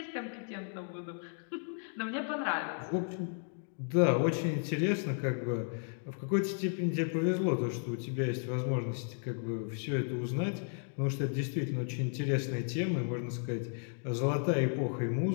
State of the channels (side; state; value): right; silent; 55 dB below the other